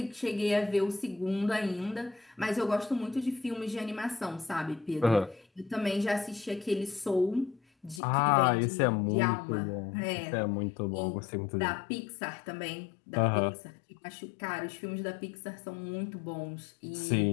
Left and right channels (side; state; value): right; drops out; at 8.0 s